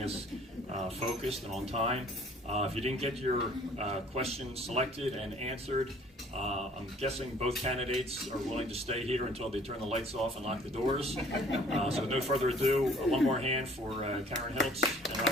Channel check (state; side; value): normal; both; correlation 0.55